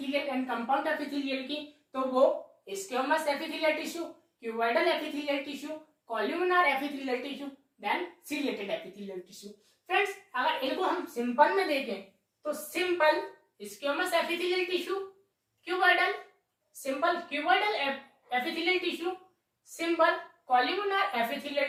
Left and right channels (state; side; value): identical; both; correlation 1.00